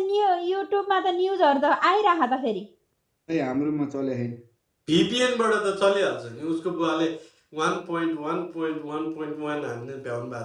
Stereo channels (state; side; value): identical; both; correlation 1.00